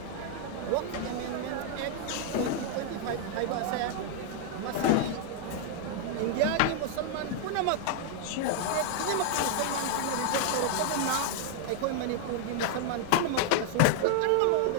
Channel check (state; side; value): different; both; correlation 0.00